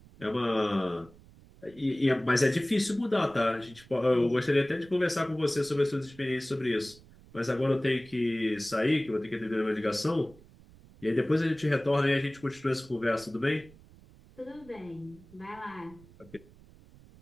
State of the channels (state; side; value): noise; right; rumble, 24 dB below the sound